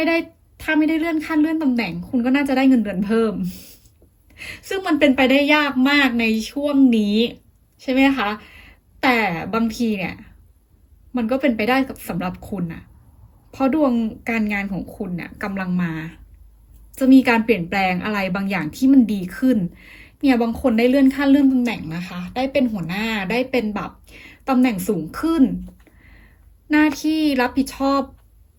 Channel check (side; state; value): both; identical; correlation 1.00